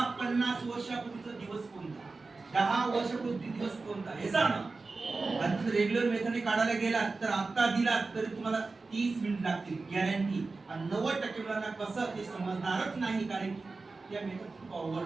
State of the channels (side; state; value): left; quieter; 3.8 dB